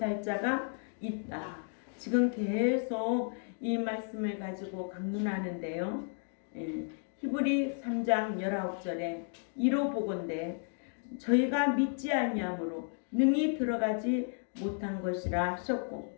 자가 있다. 지금 계속 이 말씀을 가지고 강론하는데요. 히브리 3장 19절에 이로 보건대 저희가 믿지 아니함으로 능히 들어가지 못한 것이라 하셨고,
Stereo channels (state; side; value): silent; right; 56 dB below the other